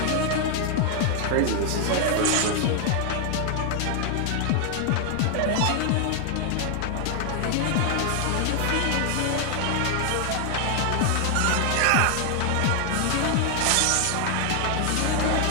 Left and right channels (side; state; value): both; different; correlation 0.00